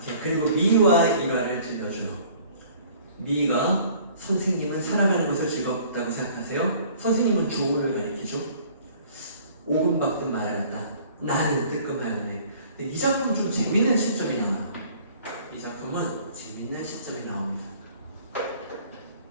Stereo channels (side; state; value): both; inverted; correlation -0.53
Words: 그리고 미와 일화를 들려줘요. 미가 선생님은 살아가는 것을 즐겁다고 생각하세요? 선생님은 조은을 가리키죠. 오금박듯 말하였다. 나는 뜨끔하였네. 이 작품은 좀 재밌는 시점이 나와요. 이 작품은 재밌는 시점이 나옵니다.